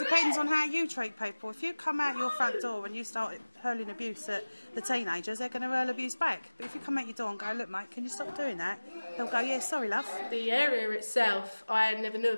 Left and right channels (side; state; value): both; inverted; correlation -1.00